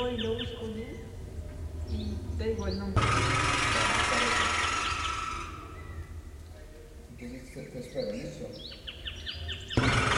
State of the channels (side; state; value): both; identical; correlation 1.00